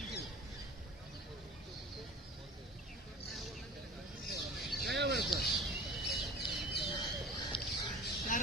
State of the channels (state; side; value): normal; both; correlation 0.40